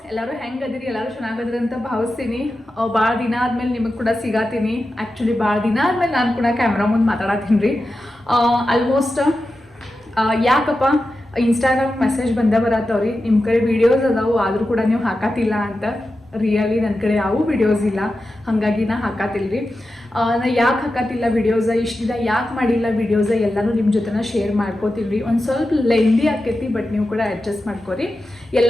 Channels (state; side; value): normal; both; correlation 0.91